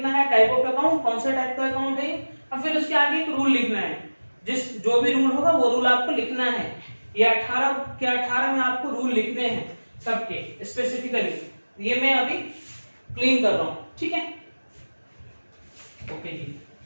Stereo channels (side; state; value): both; inverted; correlation -1.00